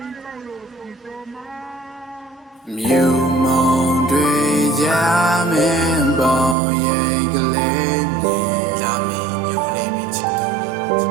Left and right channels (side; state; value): left; drops out; at 6.6 s